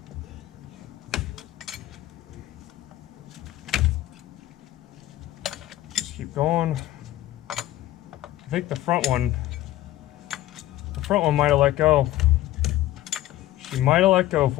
Just keep going. I think the front one might have let go. She might have let go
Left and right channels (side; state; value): right; quieter; 15.0 dB